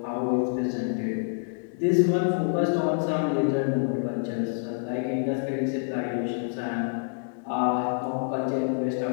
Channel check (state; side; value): silent; right; digital silence